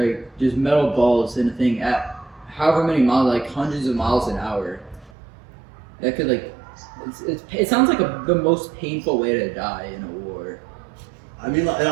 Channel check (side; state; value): left; drops out; at 5.1 s